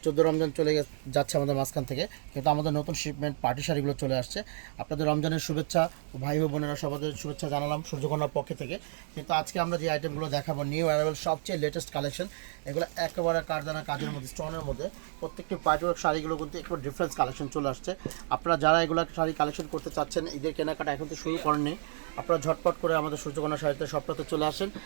14 রমজান চলে যাচ্ছে আমাদের মাঝখান থেকে, কিন্তু আমাদের নতুন শিপমেন্ট পার্টি শাড়িগুলো চলে আসছে। আপনাদের রমজানের শুভেচ্ছা, ভাই ও বোনেরা সবাদের শুভেচ্ছা জানালাম সূর্যকন্যার পক্ষ থেকে। কিন্তু আজকে আমরা যে আইটেমগুলো দেখাবো নিউ অ্যারাইভেল সবচেয়ে লেটেস্ট কালেকশন, এগুলো একেবারে কারদানা কাজের মধ্যে, স্টোনের মধ্যে। প্রত্যেকটি পার্টিওয়ার্ক শাড়িগুলো কিন্তু একটু ডিফারেন্স কালেকশন চলে আসছে। আপনারা যারা এগুলো শাড়ি কালেকশন করতে চাচ্ছেন, ঈদের কেনাকাটা এখন তো শুরু করেননি, আপনারা ঝটপট করে আমাদের সূর্যকন্যা শাড়িতে সপ্তাহে চলে আসেন।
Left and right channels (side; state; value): left; silent; digital silence